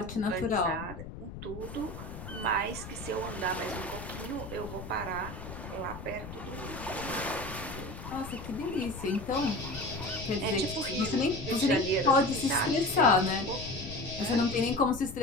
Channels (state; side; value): noise; left; rumble, 11 dB below the sound